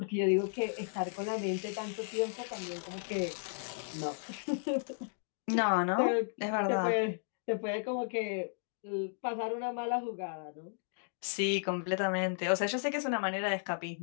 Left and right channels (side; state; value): right; silent; digital silence